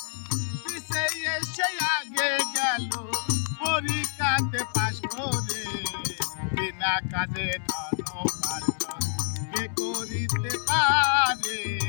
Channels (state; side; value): silent; right; digital silence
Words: আগে গেল পরীক্ষাতে পাশ করে বিনা কাজে ধন উপার্জন কে করিতে পারে